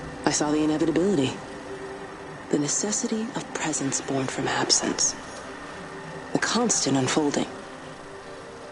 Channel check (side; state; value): both; identical; correlation 1.00